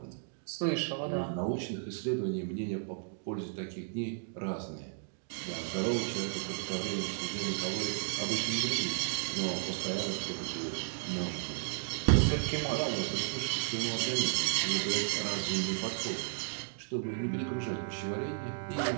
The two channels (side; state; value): left; silent; digital silence